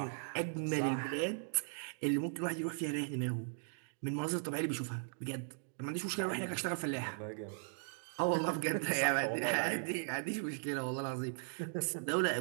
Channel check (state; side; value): silent; left; digital silence